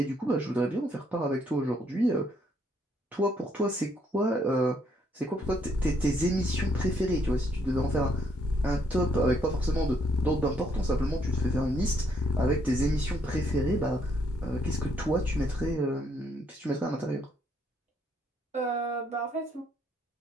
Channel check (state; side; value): normal; both; correlation 0.71